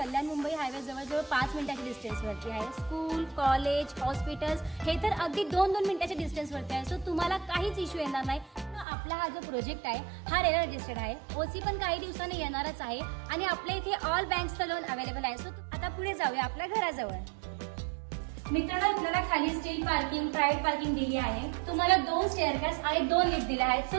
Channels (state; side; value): drops out; left; at 8.8 s